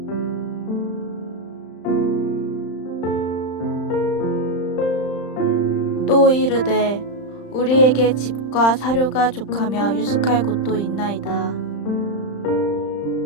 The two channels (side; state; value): right; late; 35 ms